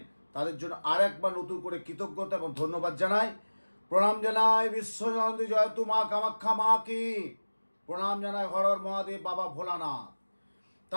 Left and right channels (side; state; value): both; inverted; correlation -1.00